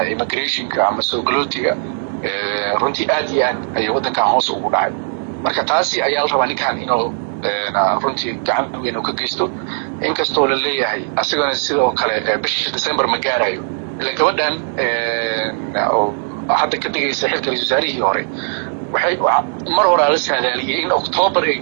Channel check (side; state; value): left; silent; 67 dB below the other